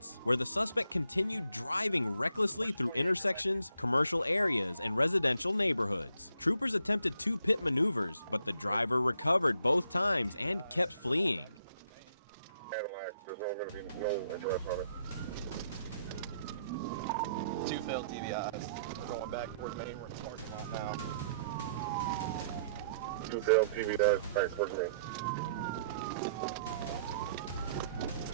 where the suspect continued driving recklessly through intersections, commercial areas, and residential neighborhoods. Troopers attempted 2 pit maneuvers, but the driver recovered both times and kept fleeing. Cadillac, there's only going to be no address on it. 2 failed TBIs. We're going back towards Maine. We're in the parking lot now. 2 failed TBIs back towards me.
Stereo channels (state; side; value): inverted; both; correlation -0.70